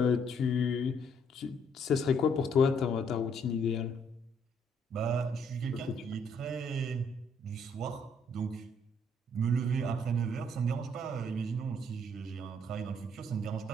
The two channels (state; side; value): normal; both; correlation 0.67